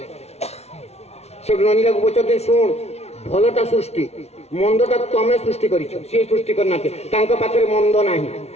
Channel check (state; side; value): late; right; 0.31 ms